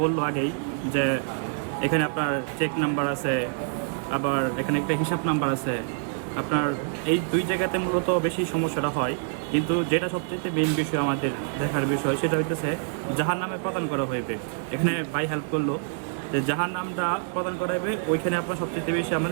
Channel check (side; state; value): left; silent; 56 dB below the other